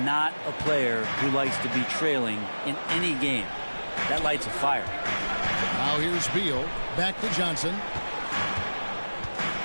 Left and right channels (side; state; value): both; inverted; correlation -1.00